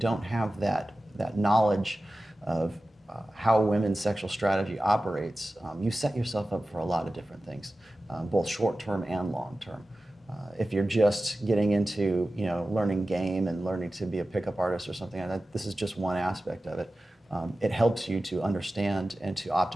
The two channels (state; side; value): normal; both; correlation 0.95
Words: have that knowledge of how women's sexual strategy operates, you set yourself up for a lot of different things, both short-term and long-term. If you're just getting into learning game and learning to be a pickup artist or something like that, this is just one aspect of it. It helps you to understand and to